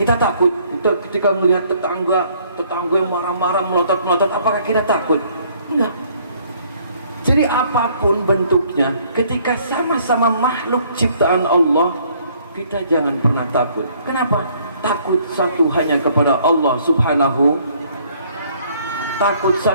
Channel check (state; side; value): inverted; both; correlation -0.62